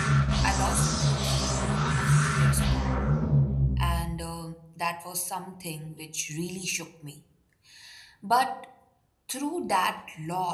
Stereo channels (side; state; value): both; identical; correlation 1.00